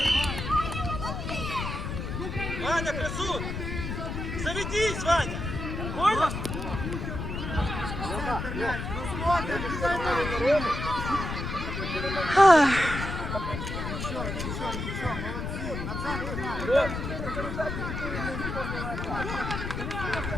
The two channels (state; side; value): noise; left; rumble, 4 dB below the sound